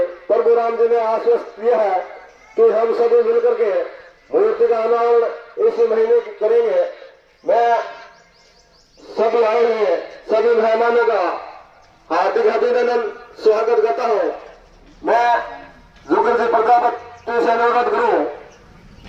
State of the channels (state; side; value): identical; both; correlation 1.00